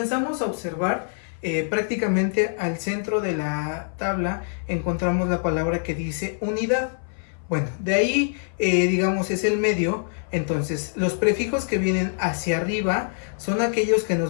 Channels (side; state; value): right; silent; 58 dB below the other